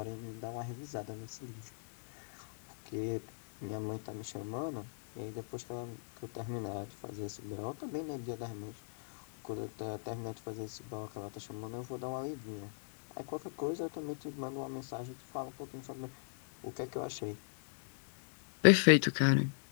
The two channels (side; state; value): right; silent; digital silence